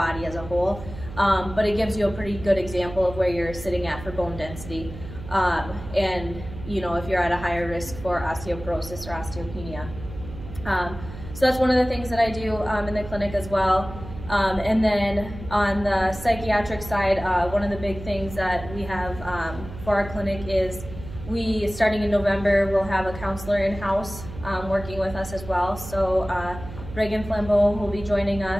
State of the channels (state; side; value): noise; right; hum, 12 dB below the sound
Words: as a whole. But it gives you a pretty good example of where you're sitting at for bone density. And you know, if you're at a higher risk for osteoporosis or osteopenia. So that's one of the things that I do in the clinic as well. And then on the psychiatric side, one of the big things that we have for our clinic is starting in November, we'll have a counselor in-house working with us as well. So Reagan Flambeau will be joining